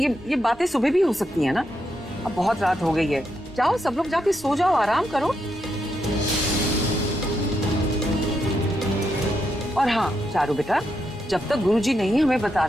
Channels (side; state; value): both; normal; correlation 0.82